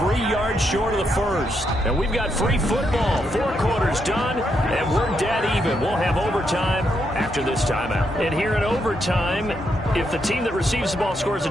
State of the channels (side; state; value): both; normal; correlation 0.79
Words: yards short of the first. And we've got free football. 4 quarters done, and we're dead even. We'll have overtime after this timeout. And here in overtime, if the team that receives the ball scores a